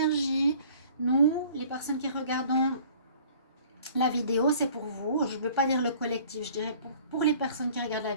Nous, les personnes qui regardons la vidéo, c'est pour vous. Je ne veux pas dire le collectif, je dirais pour les personnes qui regardent la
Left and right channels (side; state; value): both; inverted; correlation -0.52